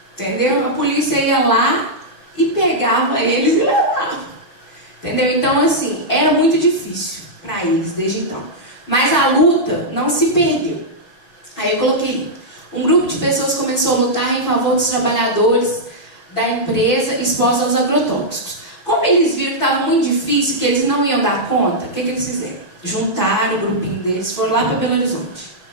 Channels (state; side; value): late; right; 5.9 ms